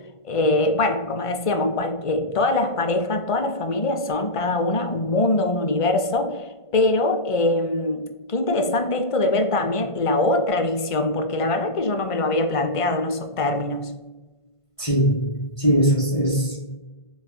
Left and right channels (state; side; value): late; right; 1.5 ms